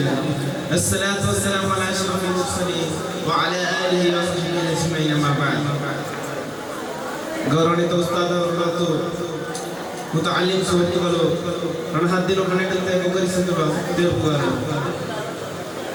الصلاة والسلام على أشرف المرسلين وعلى آله وصحبه أجمعين أما بعد. ಗೌರವಾನ್ವಿತ ಉಸ್ತಾದವರು ಮತ್ತು ಮುತಅಲ್ಲಿಮ್ ಸುಹೃತ್ತುಗಳು ನನ್ನ ಹದ್ದಿನ ಕನ್ನಡಕ್ಕೆ ಮುಖರಿಸಿರುವ ದೇವರುಗಳು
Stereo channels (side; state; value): both; identical; correlation 1.00